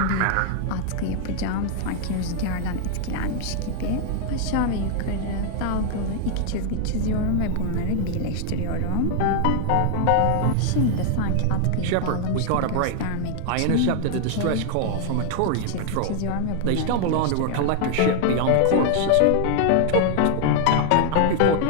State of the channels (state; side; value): different; both; correlation 0.00